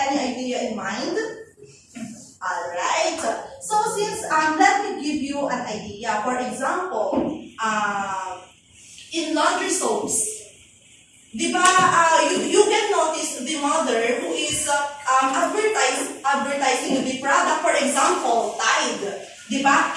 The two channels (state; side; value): identical; both; correlation 1.00